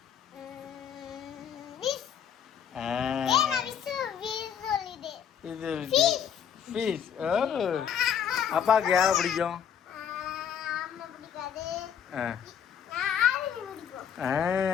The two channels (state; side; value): quieter; right; 8.4 dB